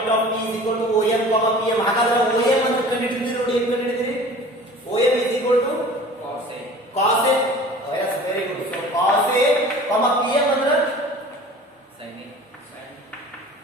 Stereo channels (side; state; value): both; normal; correlation 0.43